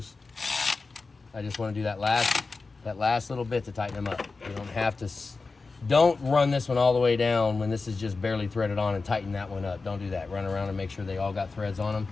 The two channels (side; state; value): right; quieter; 4.0 dB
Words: I just want to do that last little bit to tighten them up. You don't have to, don't run this one all the way down when this is just barely threaded on and tighten that one up. Don't do that. Run around and make sure they all got threads on them